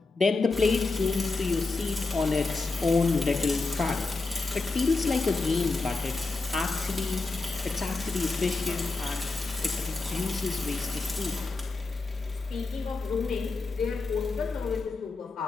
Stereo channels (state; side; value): quieter; right; 3.7 dB